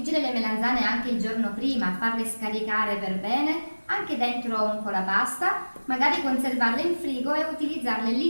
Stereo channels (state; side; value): inverted; both; correlation -1.00